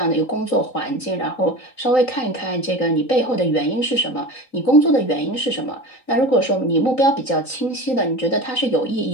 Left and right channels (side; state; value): right; late; 3.9 ms